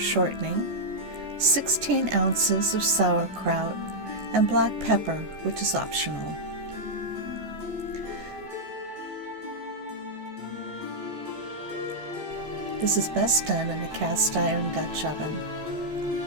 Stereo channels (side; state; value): left; late; 14 ms